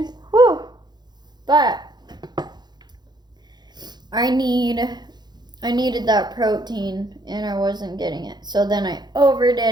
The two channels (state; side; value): late; left; 0.21 ms